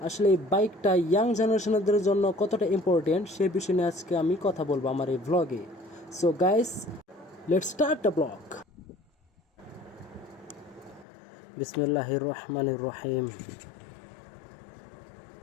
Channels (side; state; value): right; drops out; at 11.1 s